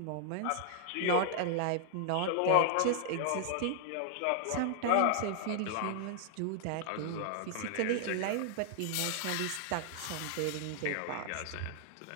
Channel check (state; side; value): different; both; correlation -0.01